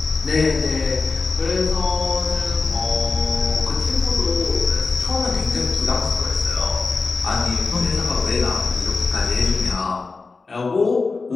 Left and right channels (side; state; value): right; quieter; 4.1 dB